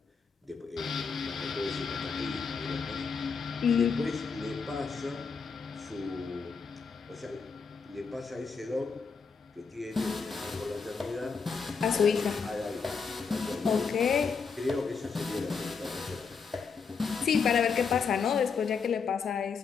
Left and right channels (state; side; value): quieter; right; 5.5 dB